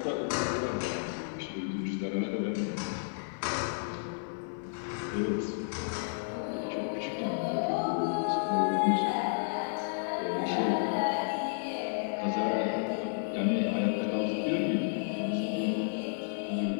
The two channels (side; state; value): right; silent; digital silence